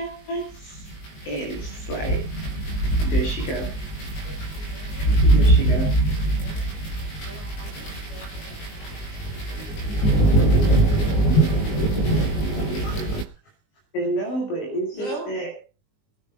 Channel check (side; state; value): right; late; 19 ms